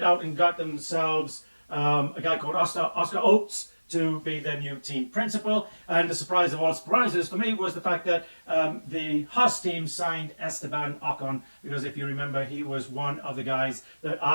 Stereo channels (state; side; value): inverted; both; correlation -1.00